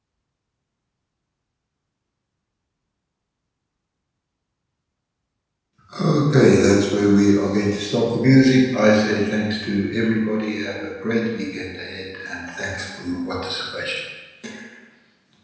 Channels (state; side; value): identical; both; correlation 1.00